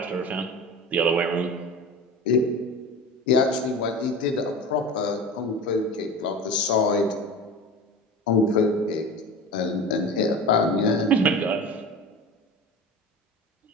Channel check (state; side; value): normal; both; correlation 0.32